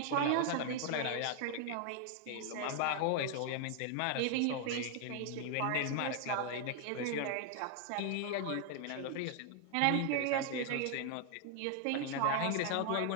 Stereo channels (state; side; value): different; both; correlation 0.00